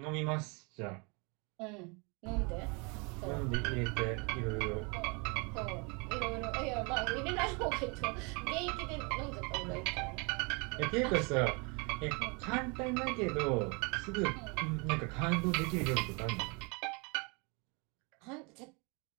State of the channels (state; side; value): quieter; left; 31.0 dB